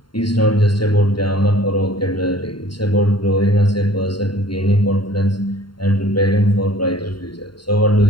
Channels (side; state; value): right; late; 0.72 ms